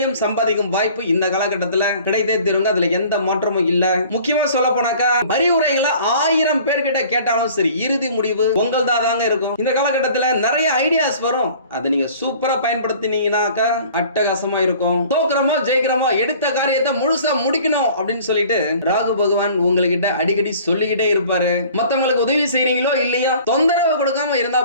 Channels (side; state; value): both; inverted; correlation -0.49